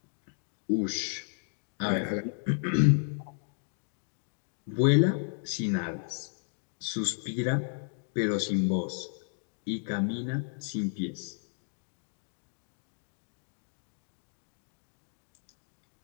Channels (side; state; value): right; silent; digital silence